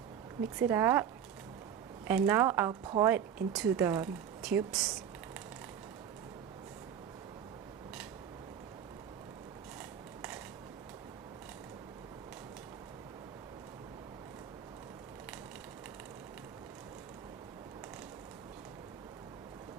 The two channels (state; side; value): quieter; left; 8.7 dB